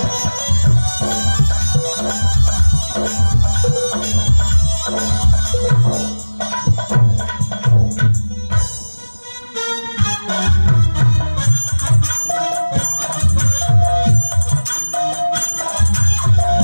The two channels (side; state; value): both; inverted; correlation -1.00